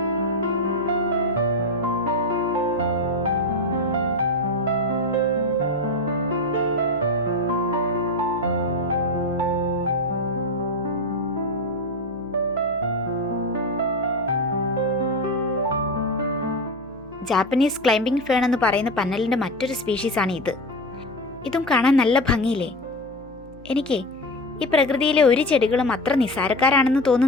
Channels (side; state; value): right; noise; hum, 20 dB below the sound